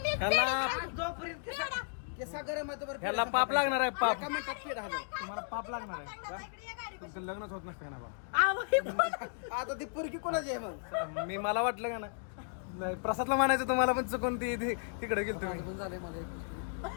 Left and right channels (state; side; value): silent; right; digital silence